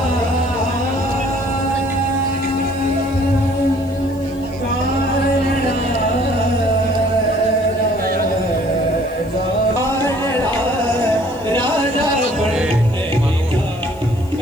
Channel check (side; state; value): left; noise; hiss, 25 dB below the sound